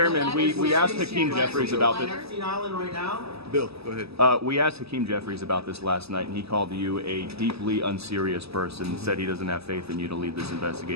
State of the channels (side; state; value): left; late; 0.78 ms